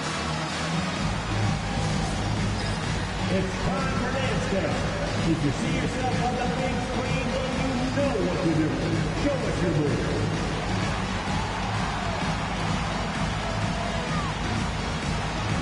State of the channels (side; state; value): both; identical; correlation 1.00